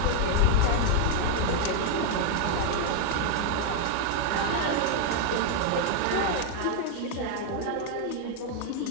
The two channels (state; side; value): different; both; correlation 0.00